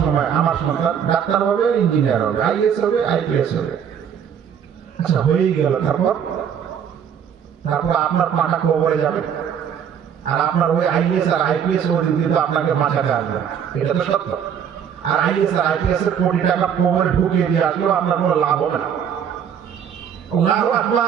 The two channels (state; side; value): quieter; left; 8.3 dB